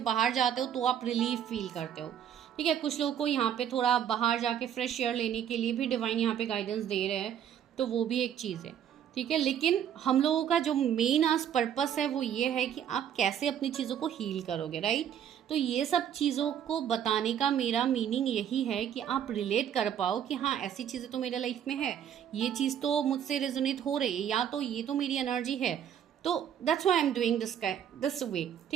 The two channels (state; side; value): quieter; left; 9.4 dB